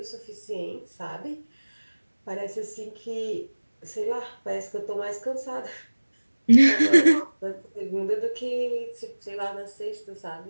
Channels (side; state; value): both; inverted; correlation -1.00